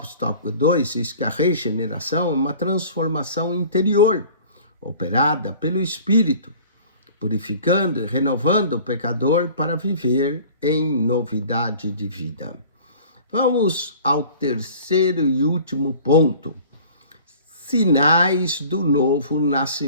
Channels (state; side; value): inverted; both; correlation -0.46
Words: tópico 2 diz que a regeneração é uma transformação interior, operada pelo Espírito, purificando e renovando o pecador para viver em novidade de vida. Vamos ao terceiro e último ponto: sinais do novo